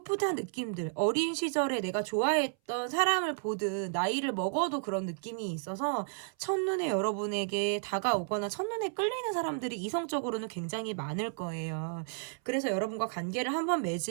느낌들, 어린 시절에 내가 좋아했던 사람을 보듯 나이를 먹어도 그런 느낌이 있어서 첫눈에 여러분에게 다가오거나 첫눈에 끌리는 사람들이 이성적으로는 굉장히 많을 거예요. 그래서 여러분과 관계를 한번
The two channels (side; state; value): left; silent; 56 dB below the other